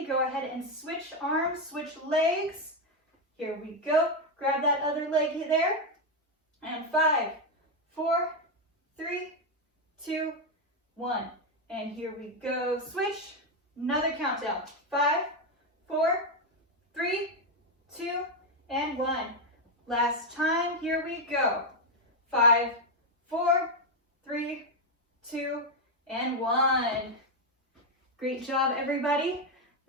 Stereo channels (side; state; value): both; normal; correlation 0.05